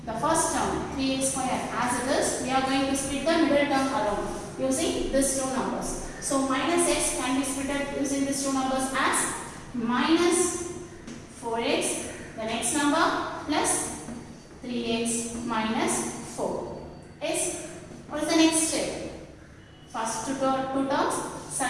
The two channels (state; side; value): identical; both; correlation 1.00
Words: the first term 3x square as it is. We are going to split the middle term alone using these two numbers. So minus x can be split using these two numbers as minus 4x, the next number, plus 3x minus 4. Yes? What is the next step? First two terms,